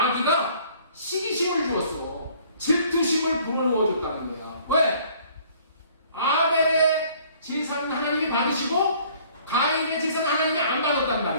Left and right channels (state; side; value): inverted; both; correlation -0.56